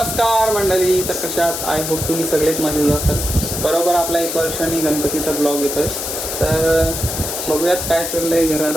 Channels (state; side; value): noise; left; hiss, 4 dB below the sound